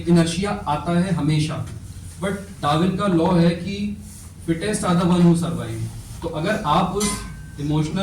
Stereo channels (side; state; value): both; identical; correlation 1.00